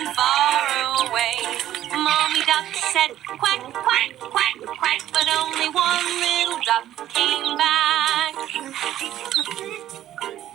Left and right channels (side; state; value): left; quieter; 12.5 dB